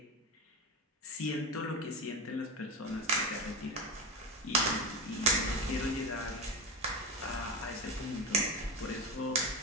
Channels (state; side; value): normal; both; correlation 0.20